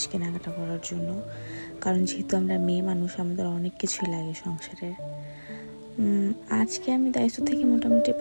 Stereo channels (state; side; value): inverted; both; correlation -1.00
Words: কেনাকাটা করার জন্য, কারণ যেহেতু আমরা মেয়ে মানুষ আমাদের অনেক কিছুই লাগে সংসারের। আজকে আমি দায়িত্ব থেকে মোটামুটি